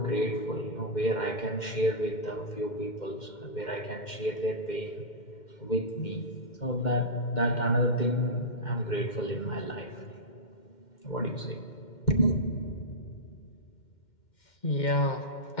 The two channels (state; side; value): late; right; 2.1 ms